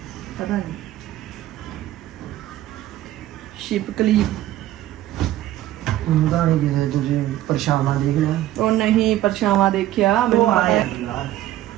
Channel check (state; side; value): quieter; left; 14.1 dB